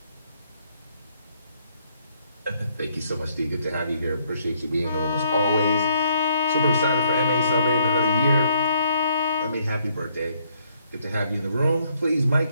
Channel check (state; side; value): inverted; both; correlation -0.69